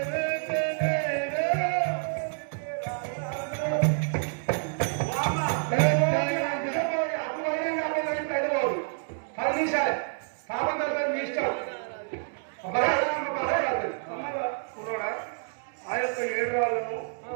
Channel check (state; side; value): silent; left; digital silence